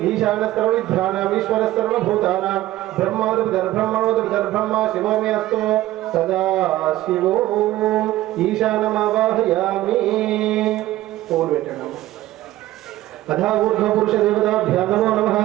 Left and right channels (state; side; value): quieter; left; 15.7 dB